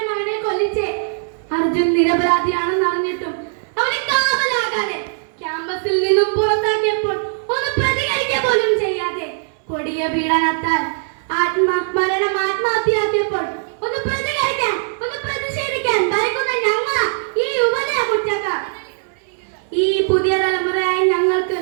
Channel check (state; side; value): silent; left; 63 dB below the other